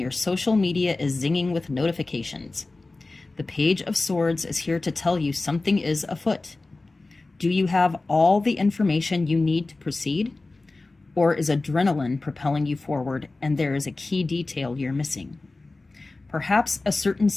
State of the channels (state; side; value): quieter; right; 3.3 dB